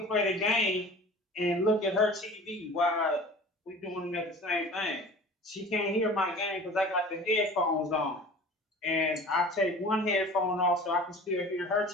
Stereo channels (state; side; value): normal; both; correlation 0.42